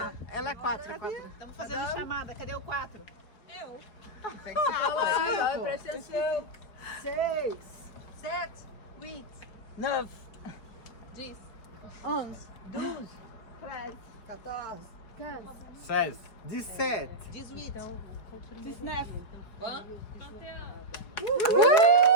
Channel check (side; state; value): right; late; 4.8 ms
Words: Ela é 4, é 4. Estamos fazendo chamada. Cadê o 4? Tem que ser Fala aí, ó, pô. presta atenção. 6, 7, 8, 9, 10, 11, 12, 13, 14, 15, 16, 17. 18. 19.